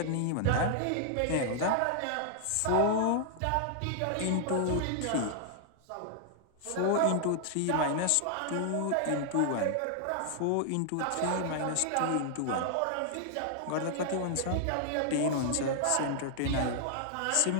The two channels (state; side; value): different; both; correlation 0.00